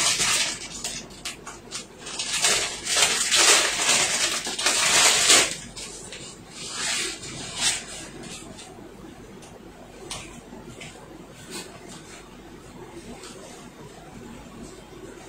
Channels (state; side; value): identical; both; correlation 1.00